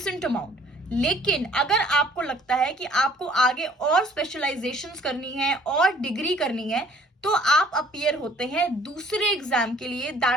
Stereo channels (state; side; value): normal; both; correlation 0.56